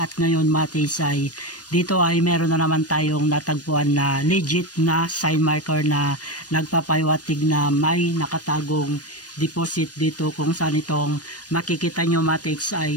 ngayon, Mate H, ay dito ay meron na naman tayong natagpuan na legit na sign marker na nagpapaywatig na may nakatagong deposit dito, kung saan itong makikita nyo, Mate H,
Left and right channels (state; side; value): late; right; 0.69 ms